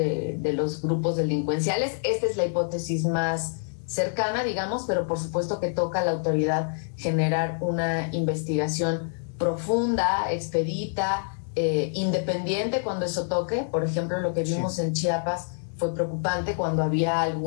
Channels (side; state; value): right; silent; digital silence